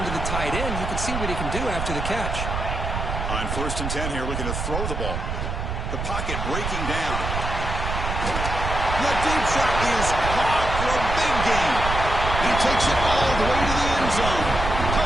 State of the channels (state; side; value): noise; right; rumble, 3 dB below the sound